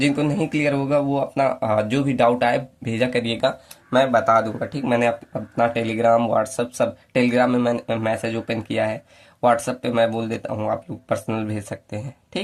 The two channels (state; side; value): identical; both; correlation 1.00